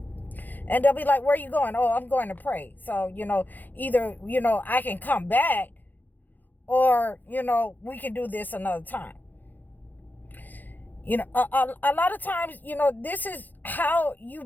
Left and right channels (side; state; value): right; late; 0.086 ms